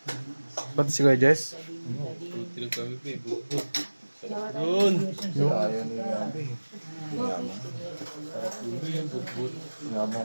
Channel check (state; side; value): inverted; both; correlation -1.00